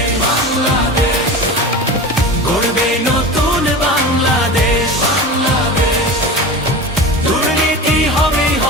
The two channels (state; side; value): normal; both; correlation 0.31